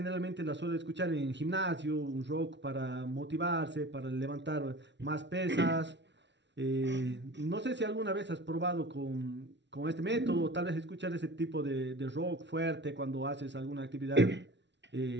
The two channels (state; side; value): late; left; 0.51 ms